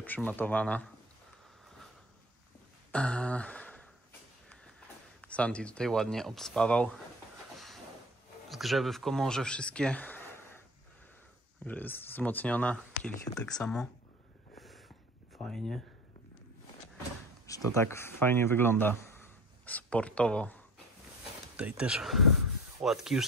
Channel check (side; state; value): both; normal; correlation 0.41